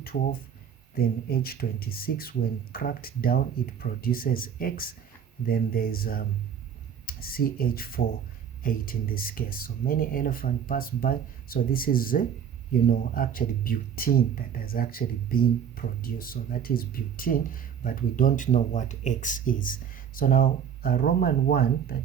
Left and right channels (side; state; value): left; quieter; 8.2 dB